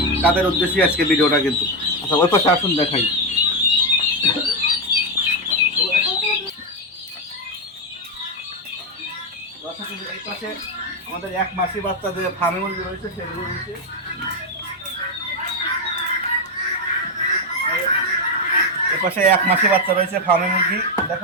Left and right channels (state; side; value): normal; both; correlation 0.06